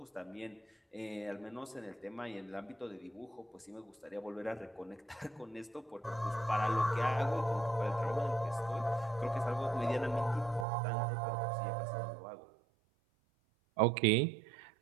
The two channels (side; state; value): left; drops out; at 10.7 s